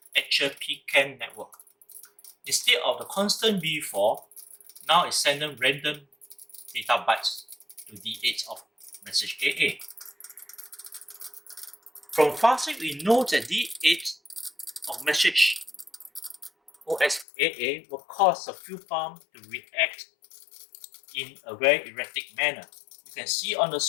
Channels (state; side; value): drops out; right; at 17.2 s